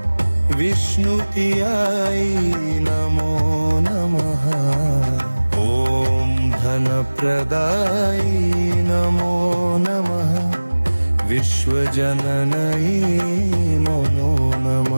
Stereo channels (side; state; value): both; inverted; correlation -1.00